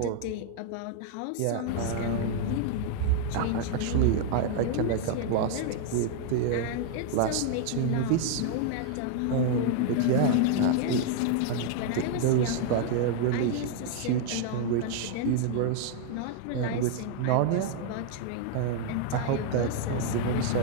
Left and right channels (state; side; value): different; both; correlation 0.00